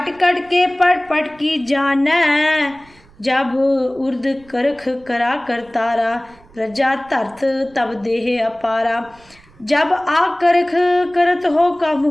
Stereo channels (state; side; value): noise; right; rumble, 27 dB below the sound